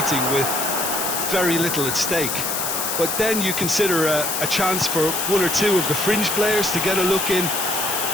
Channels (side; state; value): left; noise; hiss, 1 dB below the sound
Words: with very little at stake. But then you consider a chance for one or two of the fringe players to get a look in,